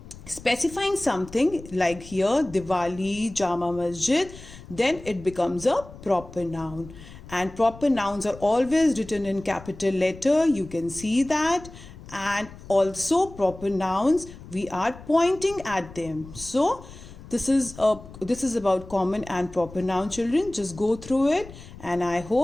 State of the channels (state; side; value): noise; left; rumble, 17 dB below the sound